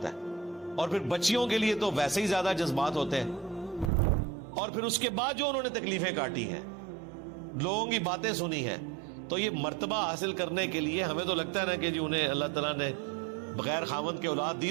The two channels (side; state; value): left; drops out; at 3.9 s